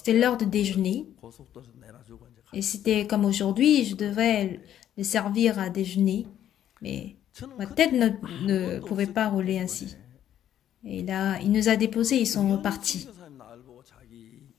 l'heure de déjeuner. 고속도로에서 내려주고 이제 Et c'était comme aujourd'hui, je devais le servir à déjeuner. Mais ma tête ne pouvait pas rouler ainsi. Et là, il nous a déposés, ils sont repartis.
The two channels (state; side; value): quieter; right; 10.9 dB